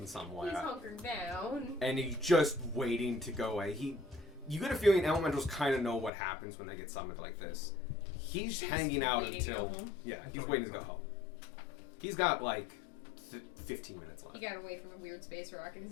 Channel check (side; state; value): right; drops out; at 6.1 s